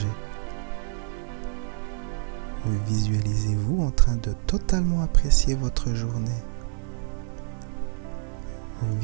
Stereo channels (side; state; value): left; silent; 61 dB below the other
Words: Visualisez-vous en train de totalement apprécier votre journée.